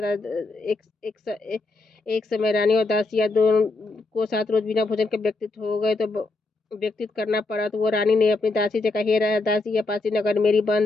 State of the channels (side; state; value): right; quieter; 3.3 dB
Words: एक समय रानी और दासियां दोनों को 7 रोज बिना भोजन के व्यतीत करना पड़ा। तो वो रानी ने अपनी दासी से कहा, हे दासी, यह पासी नगर मेरी